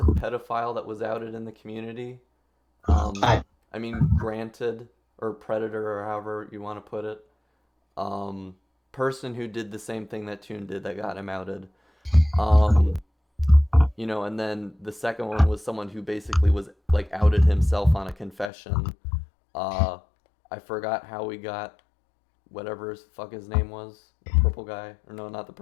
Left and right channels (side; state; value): right; drops out; at 18.5 s